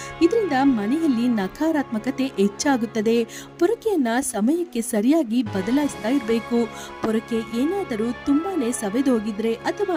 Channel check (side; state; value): both; identical; correlation 1.00